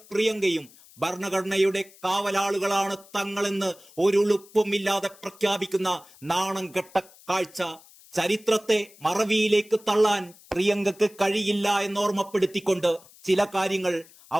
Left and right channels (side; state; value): left; noise; hiss, 24 dB below the sound